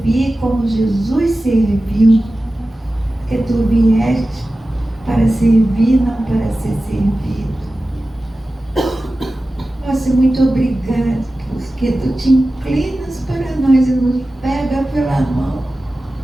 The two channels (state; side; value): normal; both; correlation 0.95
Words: como Jesus serviu, porque Tu vieste para servir, não para ser servido. Nossa, muito obrigada, porque Tu te inclinas para nós e nos pega pela mão.